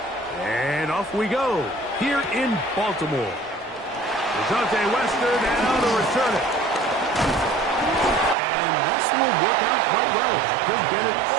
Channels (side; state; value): left; drops out; at 8.3 s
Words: And off we go here in Baltimore. DeJounte Wester now to return it. And this will work out quite well. He'll get it